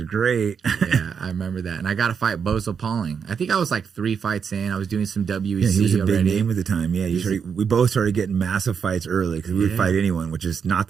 great. Yeah, I remember that. And I got to fight Bozo Pauling. I think I was like 3 fights in. I was doing some WEC. Yeah, he was a already. big name at the time. Yeah, we both started getting massive fights early because we would fight anyone, which is not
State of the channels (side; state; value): left; quieter; 6.7 dB